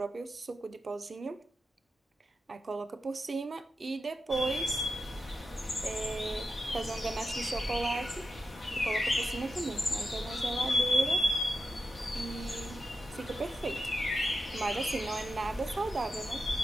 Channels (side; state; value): both; normal; correlation 0.89